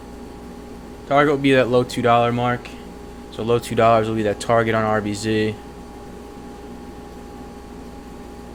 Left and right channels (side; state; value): both; identical; correlation 1.00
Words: Target will be that low $2 mark. So low $2 will be that target on RBZ.